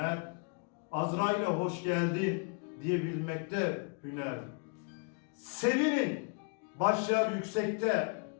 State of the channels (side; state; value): right; quieter; 39.1 dB